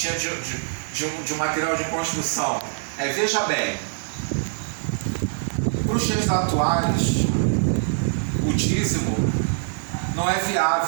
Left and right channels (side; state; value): left; silent; digital silence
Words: de um material de construção, veja bem, para os dias atuais, o dízimo não é